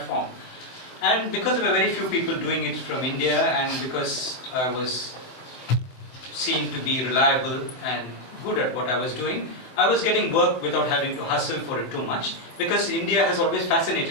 And because there were very few people doing it from India, and because I was seen to be reliable and good at what I was doing, I was getting work without having to hustle for it too much, because India has always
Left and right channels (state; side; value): late; right; 24 ms